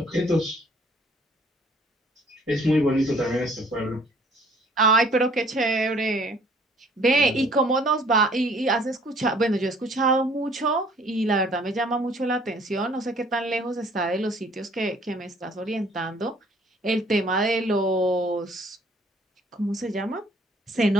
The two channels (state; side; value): normal; both; correlation 0.58